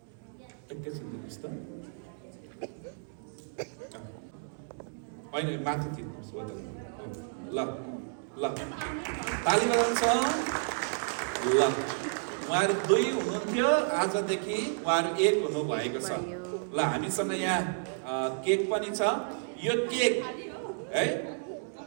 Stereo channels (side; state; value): left; silent; digital silence